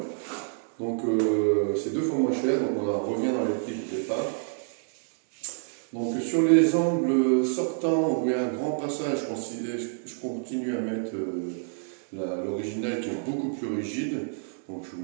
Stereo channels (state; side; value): silent; left; 60 dB below the other